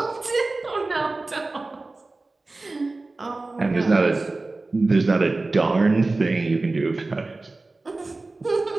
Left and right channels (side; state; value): left; quieter; 3.3 dB